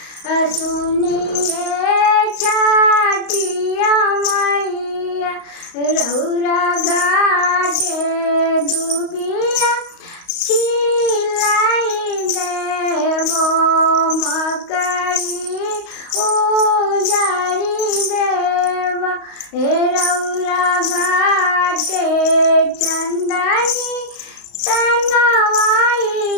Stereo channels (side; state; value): right; late; 35 ms